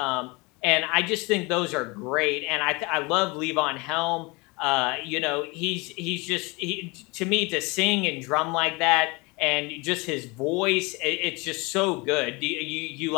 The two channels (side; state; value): right; quieter; 26.5 dB